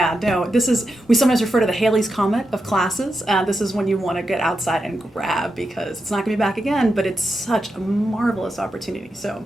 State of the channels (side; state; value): both; normal; correlation 0.87